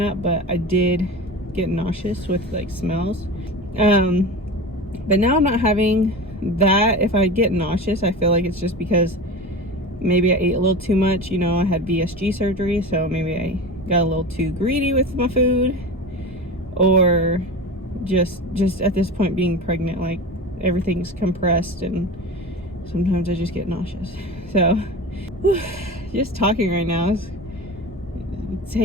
up, but I did get nauseous with like smells. But now I'm not having that. If I get nauseous, I feel like it's just because maybe I ate a little too much. You know, I had VSG surgery, so maybe I got a little too greedy with my food, or just at this point being pregnant, like everything's compressed and sometimes I just get nauseous. So just talking right now is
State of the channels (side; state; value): both; normal; correlation 0.30